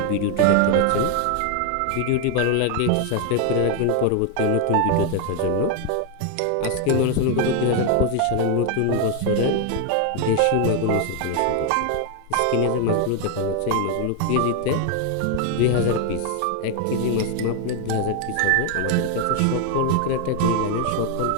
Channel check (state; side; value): different; both; correlation 0.01